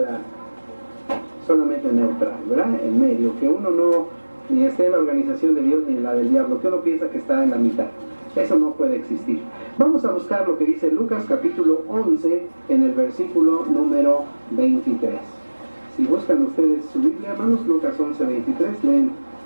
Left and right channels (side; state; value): both; inverted; correlation -1.00